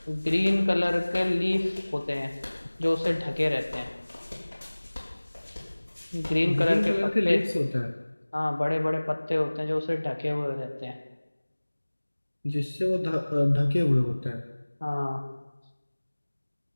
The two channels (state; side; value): inverted; both; correlation -1.00